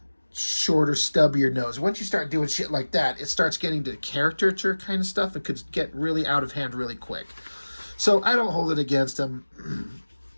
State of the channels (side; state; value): both; inverted; correlation -1.00